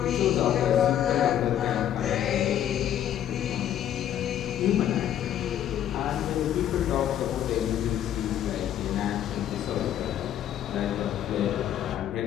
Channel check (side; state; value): right; quieter; 10.7 dB